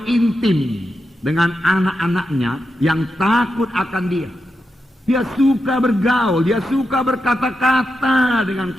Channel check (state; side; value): normal; both; correlation 0.87